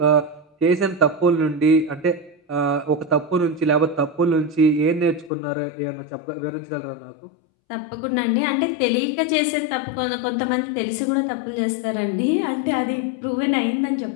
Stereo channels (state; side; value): drops out; right; at 5.3 s